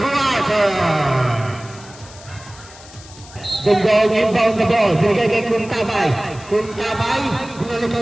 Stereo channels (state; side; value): noise; left; hiss, 20 dB below the sound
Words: Dungdong inbound the ball. Binigay kay Kuntabay. Kuntabay, binalik